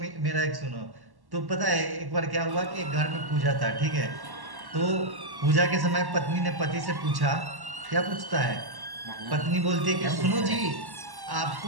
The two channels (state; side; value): late; left; 1.1 ms